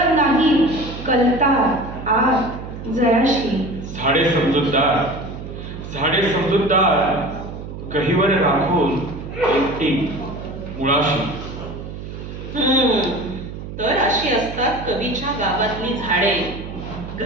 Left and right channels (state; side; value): noise; right; hum, 10 dB below the sound